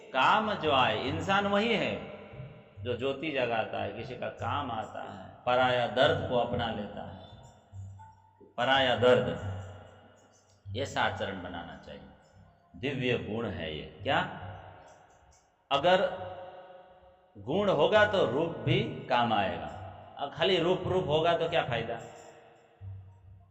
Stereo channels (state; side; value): identical; both; correlation 1.00